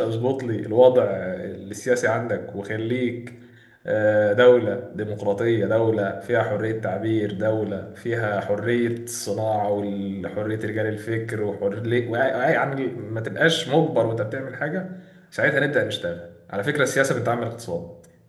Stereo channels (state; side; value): identical; both; correlation 1.00